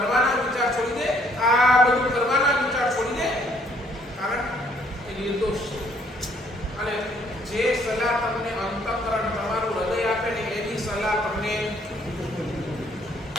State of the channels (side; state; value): both; normal; correlation 0.64